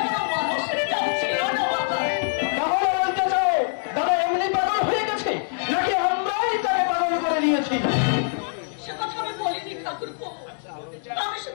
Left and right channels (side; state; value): right; silent; digital silence